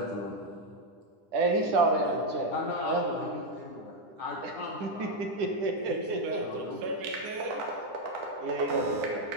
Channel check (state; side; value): late; left; 9.9 ms